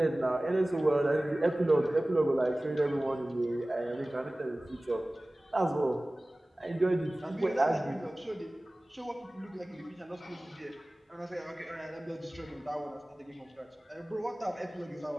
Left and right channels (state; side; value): normal; both; correlation 0.98